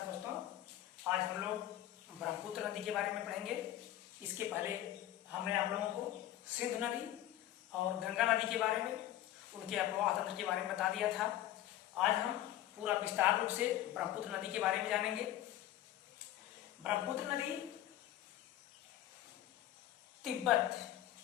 दोस्तों, आज हम लोग ब्रह्मपुत्र नदी के बारे में पढ़ेंगे। इसके पहले हमने आप लोगों को सिंधु नदी और गंगा नदी के बारे में, उनके अफवाह तंत्र के बारे में बता दिया था। आज हम पूरा विस्तार रूप से ब्रह्मपुत्र नदी के बारे में जानेंगे। ब्रह्मपुत्र नदी तिब्बत,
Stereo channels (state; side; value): quieter; right; 13.3 dB